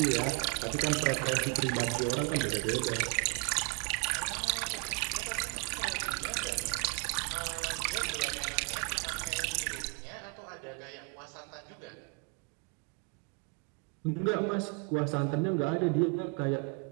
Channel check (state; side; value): quieter; left; 31.6 dB